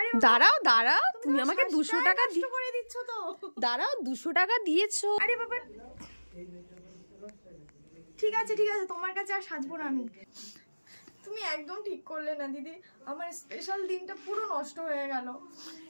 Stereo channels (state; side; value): inverted; both; correlation -1.00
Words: দাঁড়াও দাঁড়াও, তুমি আমাকে 200 টাকা করে দিচ্ছ তো। দাঁড়াও 200 টাকা দিয়েছো। আরে বাবা ঠিক আছে ঠিক আছে, তোমার কাছে আর সাজবো না আমি। তুমি একদম ঠিক করলে না দিদি, আমার স্পেশাল দিনটা পুরো নষ্ট হয়ে গেল।